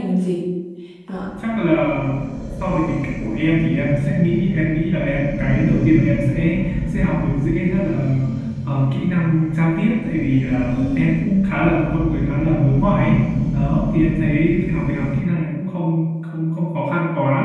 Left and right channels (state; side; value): identical; both; correlation 1.00